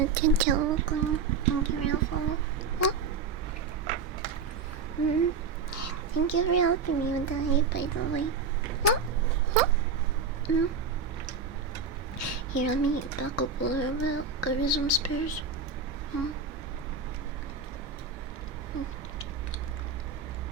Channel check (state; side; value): quieter; left; 5.1 dB